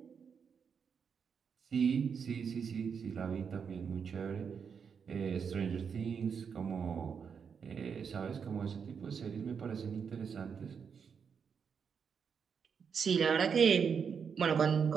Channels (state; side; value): quieter; left; 6.6 dB